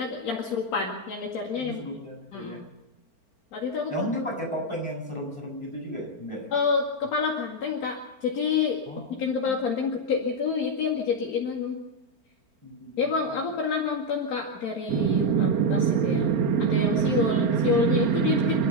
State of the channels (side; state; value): right; late; 4.4 ms